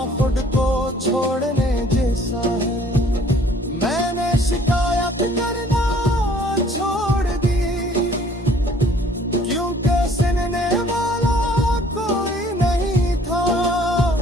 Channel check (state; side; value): normal; both; correlation 0.57